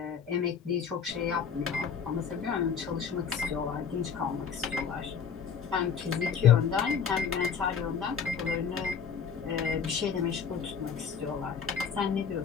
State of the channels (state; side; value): quieter; right; 6.7 dB